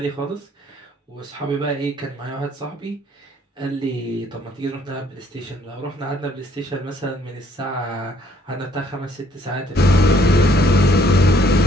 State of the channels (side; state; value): both; normal; correlation 0.64